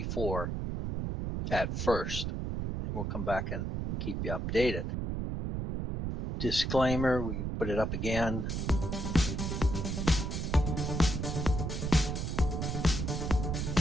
at first. And we'll come back and keep you updated. Disclaimer, we can put it up again.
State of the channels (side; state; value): right; noise; rumble, 2 dB below the sound